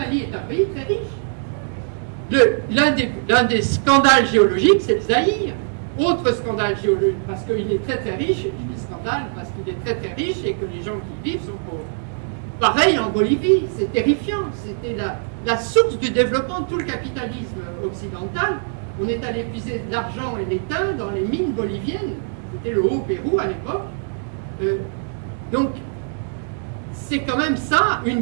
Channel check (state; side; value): silent; left; digital silence